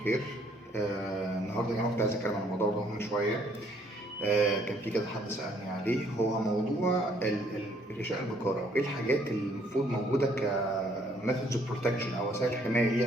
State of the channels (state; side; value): normal; both; correlation 0.65